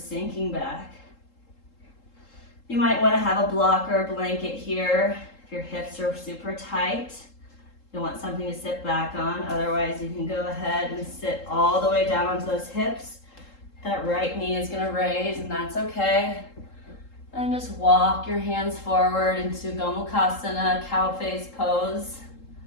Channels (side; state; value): right; late; 3.7 ms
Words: back. You might want to have a block or a blanket here if your hips are super tight. You want something to sit back on. Otherwise, you can go ahead and sit all the way down onto those hips. That right knee is going to raise, and that's okay. And just walk your hands forward into Gomukhasana, cow face pose.